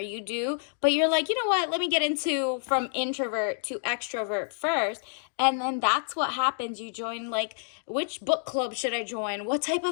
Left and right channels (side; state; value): right; silent; digital silence